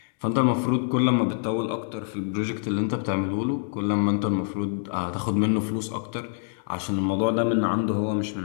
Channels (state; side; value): silent; right; digital silence